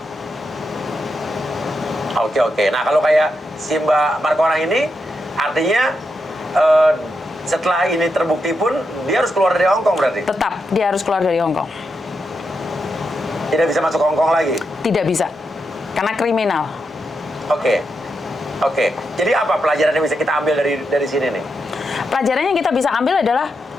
Oke. Nah kalau kayak si Mbak Markorang ini, artinya setelah ini terbukti pun dia harus keluar dari Hong Kong berarti? Tetap dia harus keluar dari Hong Kong. Tidak bisa masuk Hong Kong lagi? Tidak bisa, karena kriminal. Oke. Jadi apa pelajaran yang bisa kita ambil dari sini nih? Pelajaran yang kita bisa ambil adalah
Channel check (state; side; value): normal; both; correlation 0.84